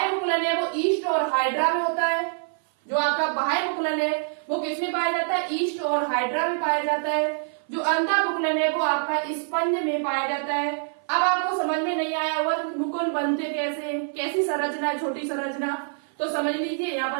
मुकुलन है वो ईस्ट और हाइड्रा में होता है। जो आपका बाह्य मुकुलन है वो किसमें पाया जाता है? ईस्ट और हाइड्रा में पाया जाता है। जो अंतः मुकुलन है वो आपका स्पंज में पाया जाता है। अब आपको समझ में नहीं आया हुआ मुकुल बनते कैसे, कैसी संरचना है, छोटी संरचना, तो समझ लीजिए, यहाँ पर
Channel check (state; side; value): silent; left; 57 dB below the other